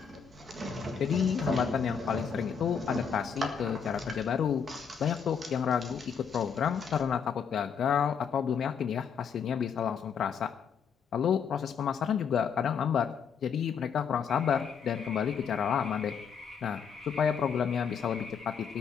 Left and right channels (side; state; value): right; quieter; 6.9 dB